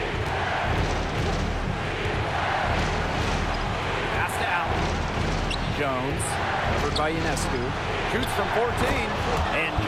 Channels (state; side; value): identical; both; correlation 1.00